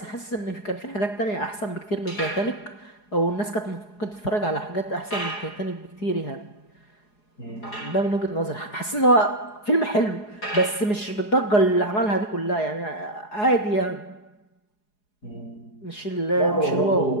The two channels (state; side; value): late; right; 4.8 ms